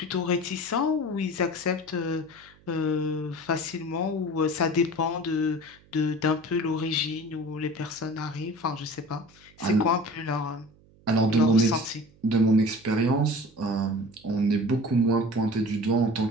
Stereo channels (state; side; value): noise; right; hum, 28 dB below the sound